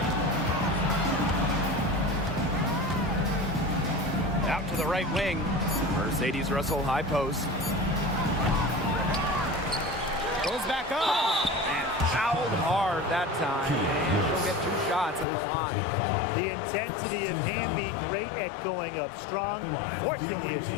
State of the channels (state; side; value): drops out; right; at 15.2 s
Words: Out to the right wing. Mercedes Russell high post. Goes back up. And fouled hard that time. And she'll get 2 shots at the line. The intensity of Hamby, great at going up strong, forcing the